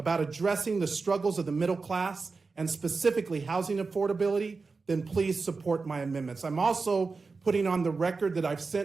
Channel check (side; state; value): left; quieter; 4.3 dB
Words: addressing the struggles of the middle class and specifically housing affordability, then please support my amendments. I'm also putting on the record that I've